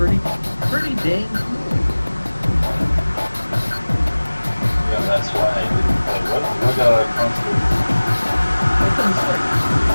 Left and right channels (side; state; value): both; inverted; correlation -1.00